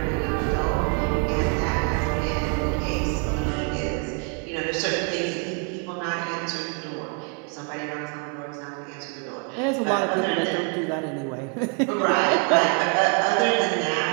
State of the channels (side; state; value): left; quieter; 36.3 dB